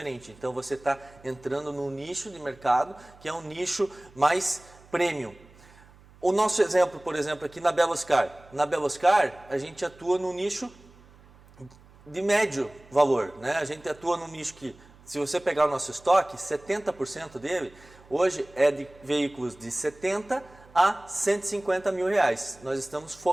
Então, você está entrando num nicho de mercado que é um nicho mais premium. O nosso exemplo, por exemplo, aqui na Beloscar. Na Beloscar, a gente atua no nicho de médio valor, né? A gente atua num nicho que, se você pegar o nosso estoque, 70% dele hoje é de veículos de 70 a 150 mil reais. Nós estamos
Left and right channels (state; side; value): noise; right; hum, 25 dB below the sound